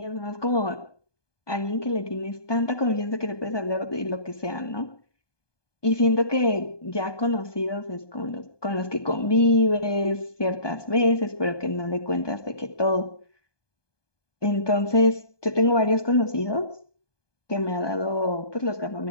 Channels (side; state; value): right; late; 1.2 ms